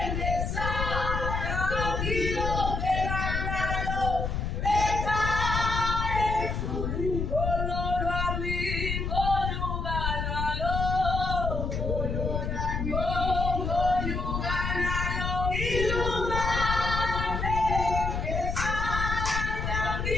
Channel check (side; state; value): left; noise; rumble, 2 dB below the sound